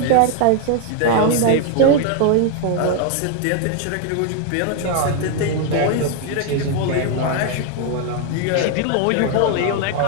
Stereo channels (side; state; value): both; different; correlation 0.00